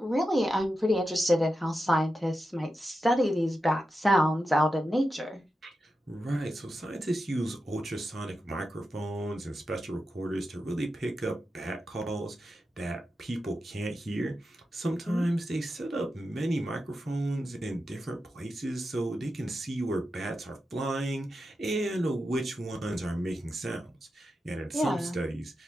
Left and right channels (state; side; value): normal; both; correlation 0.90